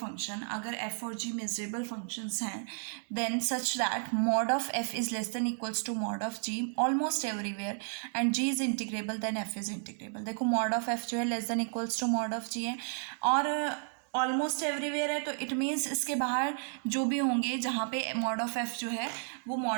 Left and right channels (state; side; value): silent; left; 56 dB below the other